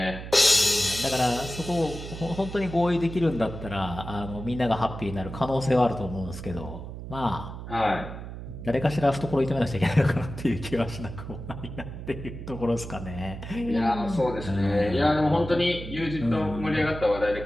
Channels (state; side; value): noise; right; hum, 10 dB below the sound